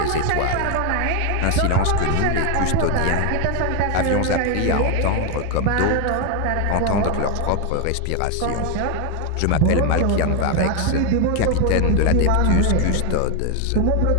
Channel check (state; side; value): different; both; correlation 0.01